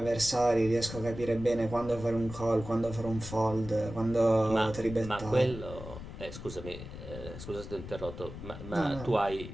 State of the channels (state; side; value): noise; left; rumble, 11 dB below the sound